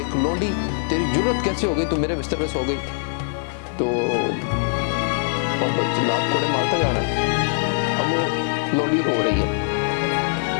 लौंडी, तेरी जुर्रत कैसे हो गई, तू मेरे बिस्तर पे सो गई? तो जल्लाद कोड़े मारता जा रहा है। अब वो लौंडी रो रही है,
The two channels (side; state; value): right; silent; digital silence